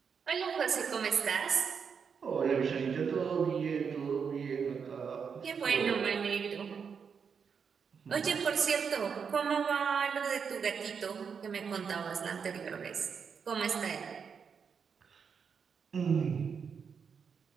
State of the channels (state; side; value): quieter; left; 6.4 dB